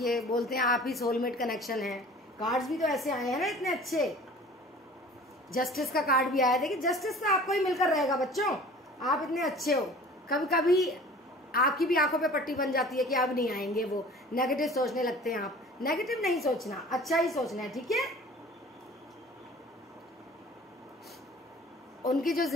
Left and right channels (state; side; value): normal; both; correlation 0.45